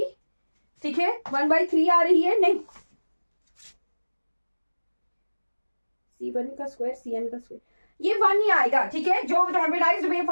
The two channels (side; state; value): both; inverted; correlation -1.00